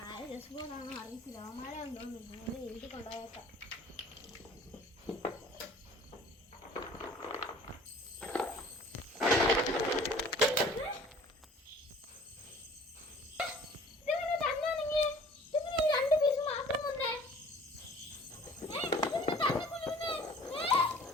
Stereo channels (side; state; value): both; normal; correlation 0.50